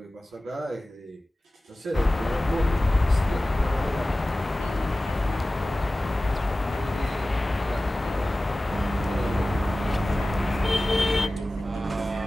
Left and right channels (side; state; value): both; normal; correlation 0.96